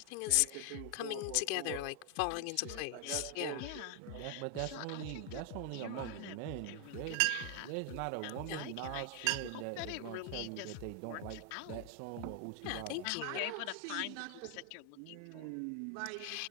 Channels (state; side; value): different; both; correlation 0.00